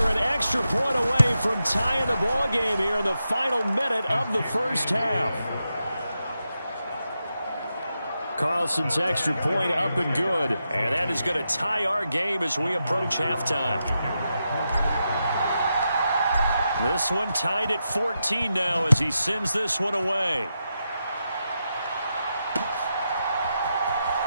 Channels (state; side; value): inverted; both; correlation -0.87